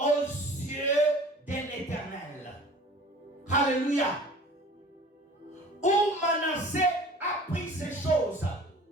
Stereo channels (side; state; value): both; normal; correlation 0.45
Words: yeux de l'Éternel. Alléluia. Où Manassé a pris ces choses